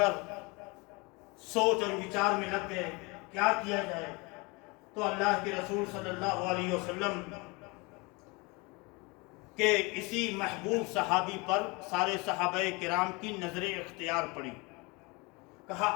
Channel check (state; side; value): quieter; right; 27.0 dB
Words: سوچ اور وچار میں لگ گئے کیا کیا جائے. تو اللہ کے رسول صلی اللہ علیہ وسلم کہ اسی محبوب صحابی پر سارے صحابہ کرام کی نظر اختیار پڑی. کہا